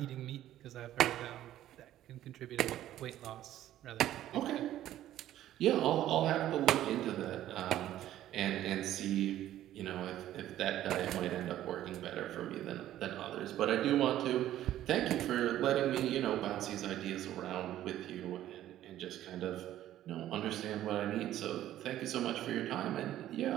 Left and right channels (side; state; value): left; quieter; 12.9 dB